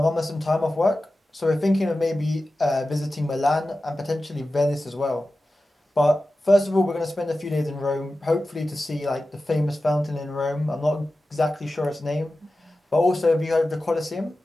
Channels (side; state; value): both; normal; correlation 0.94